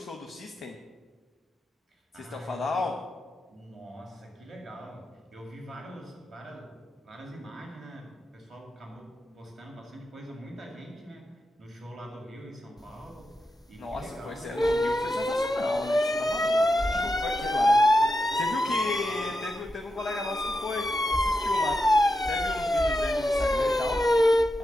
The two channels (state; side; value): normal; both; correlation 0.88